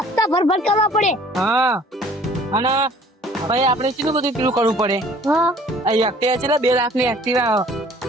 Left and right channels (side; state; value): both; normal; correlation 0.53